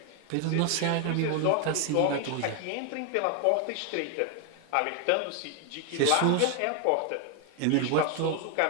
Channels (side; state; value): both; different; correlation 0.00